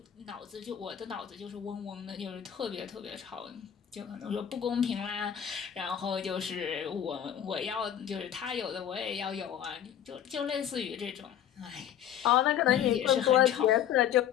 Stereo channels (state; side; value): quieter; right; 10.0 dB